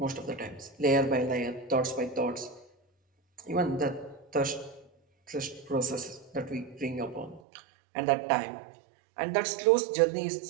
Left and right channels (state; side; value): drops out; left; at 7.4 s